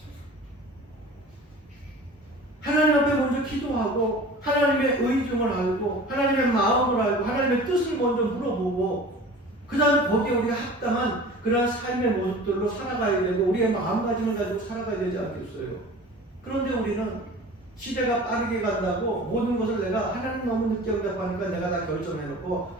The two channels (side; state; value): both; normal; correlation 0.41